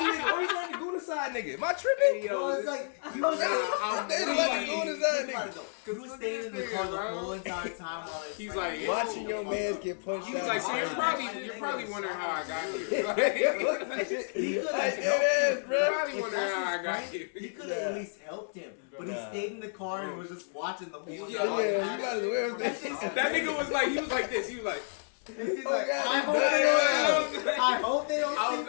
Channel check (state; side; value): silent; right; digital silence